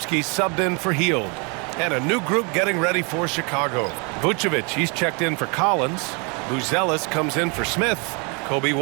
subbed in for Hield. And a new group getting ready for Chicago. Vucevic, he's checked in for Collins. Buzelis comes in for Smith. Kobe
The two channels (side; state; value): left; quieter; 32.9 dB